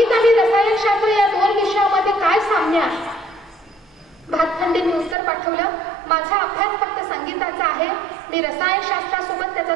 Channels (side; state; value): left; drops out; at 5.2 s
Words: आणि रसायनशास्त्र या 2 विषयामध्ये काय साम्य आहे. भातखंडेंनी उत्तर पाठवलं, माझा अभ्यास फक्त संगीताचा आहे, मी रसायनशास्त्रासोबत त्याचा